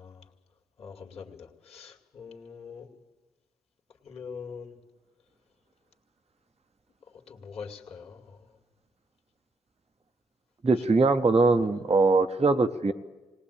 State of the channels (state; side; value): quieter; left; 3.0 dB